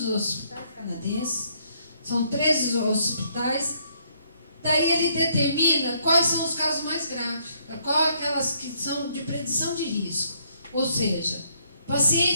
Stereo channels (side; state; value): both; inverted; correlation -0.69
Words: hospitais canadenses. São 13 hospitais. Daí ele determina quais são os casos mais graves, quais aquelas que são de predição de risco. Ou seja,